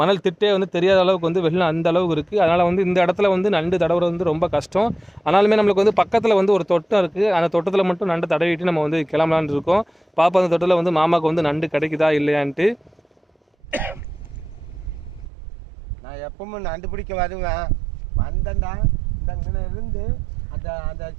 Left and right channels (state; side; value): drops out; left; at 15.3 s